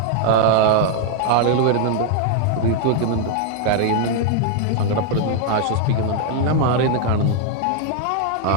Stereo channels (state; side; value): different; both; correlation 0.00